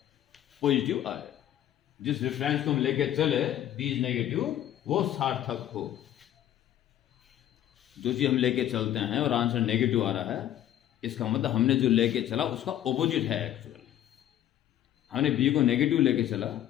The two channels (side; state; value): right; quieter; 11.8 dB